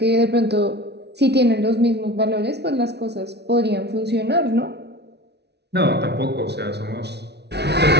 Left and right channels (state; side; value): late; left; 0.49 ms